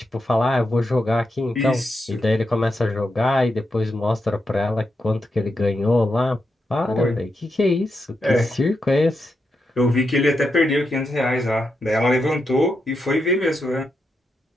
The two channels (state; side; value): normal; both; correlation 0.85